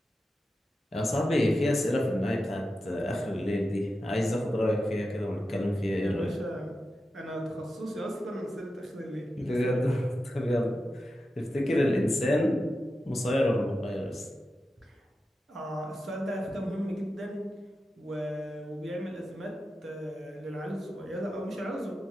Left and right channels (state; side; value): normal; both; correlation 0.91